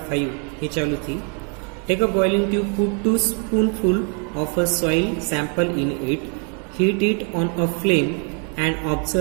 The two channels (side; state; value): left; quieter; 39.7 dB